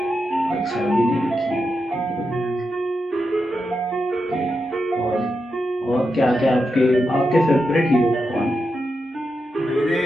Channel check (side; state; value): both; normal; correlation 0.87